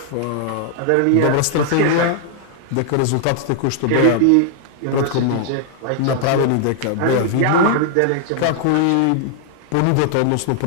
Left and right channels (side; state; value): both; different; correlation 0.00